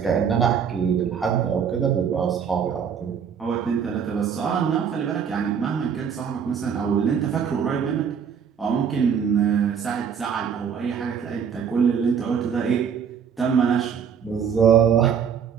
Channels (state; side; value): quieter; left; 7.4 dB